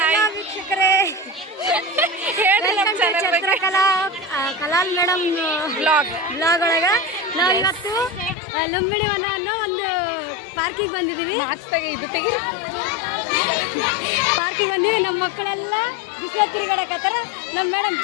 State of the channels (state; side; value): drops out; right; at 8.3 s